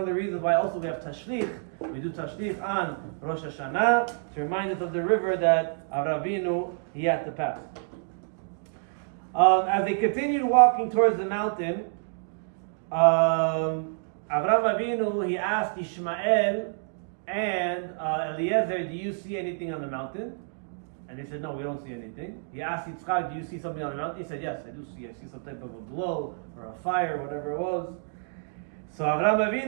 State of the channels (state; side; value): silent; left; digital silence